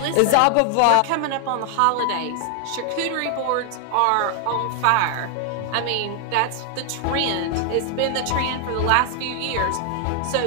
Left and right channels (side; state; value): both; different; correlation 0.00